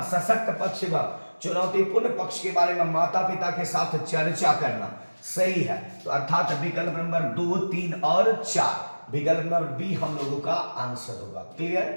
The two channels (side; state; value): both; inverted; correlation -1.00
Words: सशक्त पक्ष व चुनौतीपूर्ण पक्ष के बारे में माता पिता के साथ चर्चा करना। सही है, तो अर्थात विकल्प नंबर 2, 3 और 4, विकल्प नंबर बी हम लोगों का आंसर होगा।